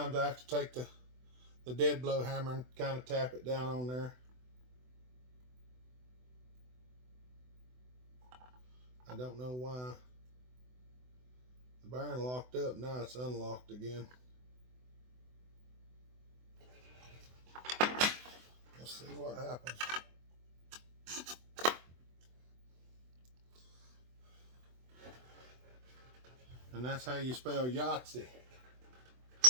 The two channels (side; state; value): left; late; 24 ms